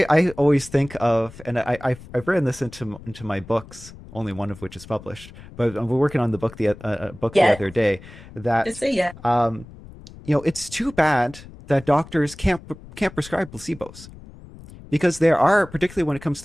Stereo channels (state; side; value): noise; left; rumble, 18 dB below the sound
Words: always think of, and I've written this into my books, only one of which is published, but we're working on the book the Yeah. other day Just that say yeah. it's too bad that doctors can't prescribe placebos because there are, particularly when it comes